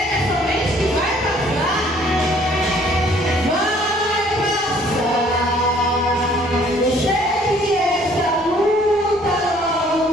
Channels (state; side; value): normal; both; correlation 0.59